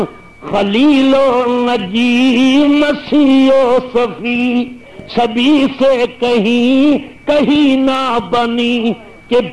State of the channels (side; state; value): both; identical; correlation 1.00